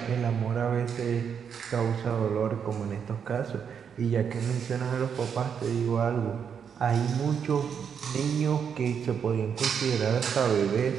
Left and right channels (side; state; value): left; quieter; 7.3 dB